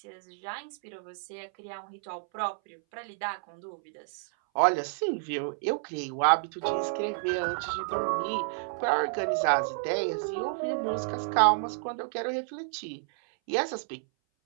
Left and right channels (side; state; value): left; silent; 57 dB below the other